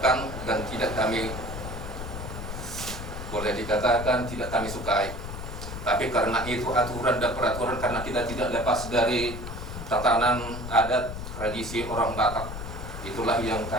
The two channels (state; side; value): noise; left; rumble, 8 dB below the sound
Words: dan tidak kami boleh dikatakan tidak kami sukai, tapi karena itu aturan dan peraturan karena kita tidak lepas dari tatanan adat tradisi orang Batak, itulah yang